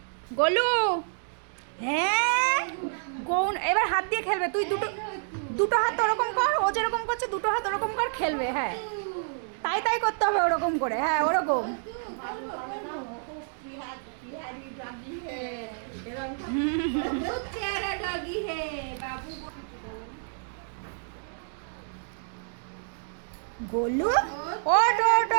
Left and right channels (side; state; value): left; silent; digital silence